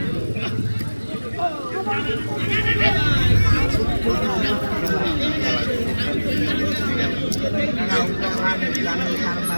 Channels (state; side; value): inverted; both; correlation -1.00